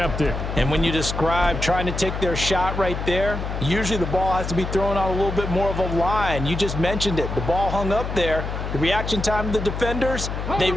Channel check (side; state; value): left; noise; hum, 5 dB below the sound